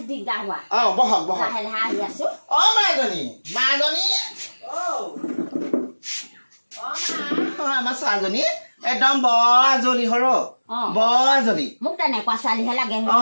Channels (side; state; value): both; inverted; correlation -1.00